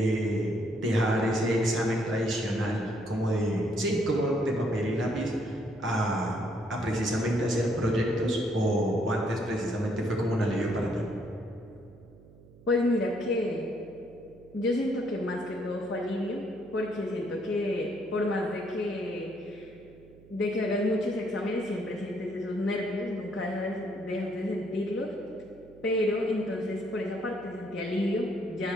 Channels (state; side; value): noise; right; hum, 23 dB below the sound